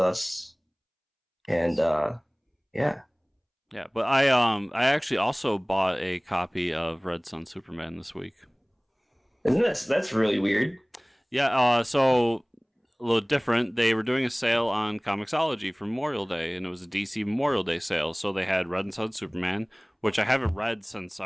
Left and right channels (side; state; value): both; identical; correlation 1.00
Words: And yeah. Yeah, but I actually also bought a copy of Red Sun Superman this week. Isn't that's really weird? Yeah, so a little different. They were doing a sale on Comixology for Memorial Day, and it was a DC Memorial Day sale. So they had Red Sun Superman, which I haven't read since